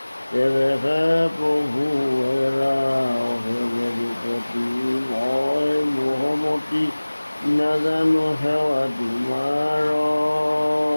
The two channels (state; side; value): inverted; both; correlation -1.00